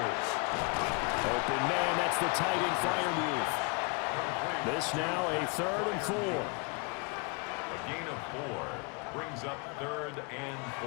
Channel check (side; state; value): right; quieter; 32.8 dB